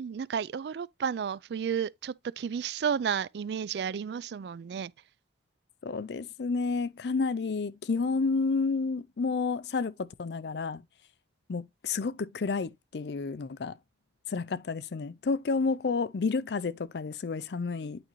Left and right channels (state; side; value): normal; both; correlation 0.22